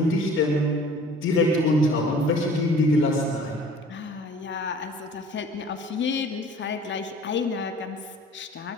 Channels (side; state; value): both; normal; correlation 0.49